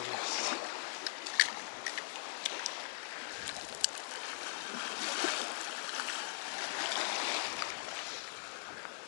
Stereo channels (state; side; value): silent; right; 50 dB below the other